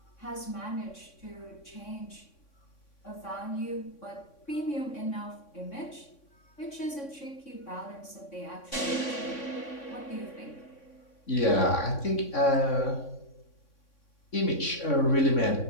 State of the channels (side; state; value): right; late; 3.6 ms